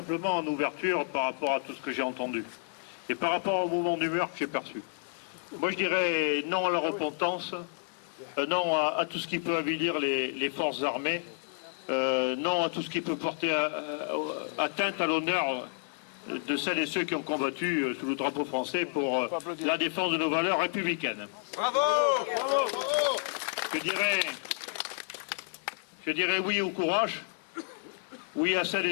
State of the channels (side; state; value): right; silent; digital silence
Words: en ouverture par rapport à tout ce que j'ai entendu et par rapport au mouvement d'humeur que j'ai perçu. Moi je dirais non à la repentance, non à tout ce qui peut avilir les forces armées, non à tout ce qui peut porter atteinte à l'honneur de celles et ceux qui ont combattu sous le drapeau français pour la défense de nos valeurs républicaines. Bravo, bravo. Je dirais oui au courage. Oui à celles